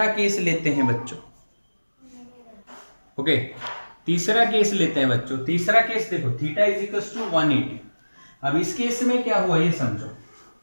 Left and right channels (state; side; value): inverted; both; correlation -1.00